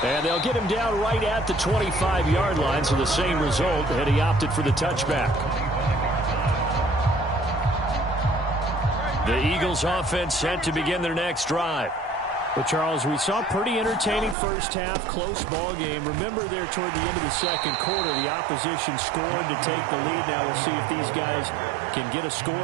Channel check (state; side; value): drops out; left; at 14.4 s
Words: And they'll get him down right at the 25-yard line, so the same result, and he opted for the touchback. The Eagles offense set to begin their next drive. Well, Charles, we saw pretty entertaining first half, close ball game. Remember there toward the end of the second quarter, the opposition scored to take the lead. Now we'll see if these guys can get a